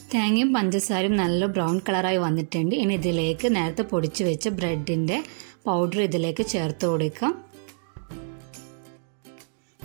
തേങ്ങയും പഞ്ചസാരയും നല്ല ബ്രൗൺ കളറായി വന്നിട്ടുണ്ട്. ഇനി ഇതിലേക്ക് നേരത്തെ പൊടിച്ചു വെച്ച ബ്രെഡിൻ്റെ പൗഡർ ഇതിലേക്ക് ചേർത്ത് കൊടുക്കാം.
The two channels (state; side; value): silent; left; digital silence